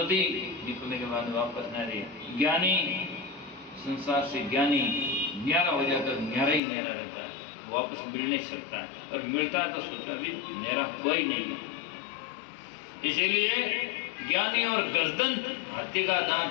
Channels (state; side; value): drops out; right; at 6.6 s